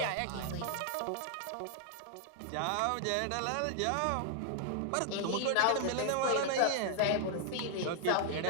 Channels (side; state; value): both; different; correlation 0.00